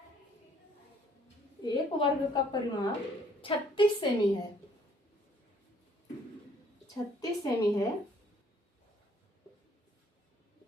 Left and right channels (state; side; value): normal; both; correlation 0.62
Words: एक वर्ग का परिमाप 36 सेमी है, 36 सेमी है।